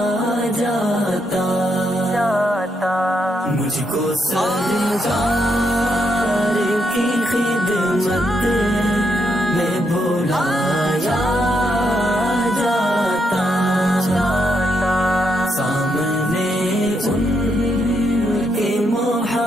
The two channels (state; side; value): normal; both; correlation 0.79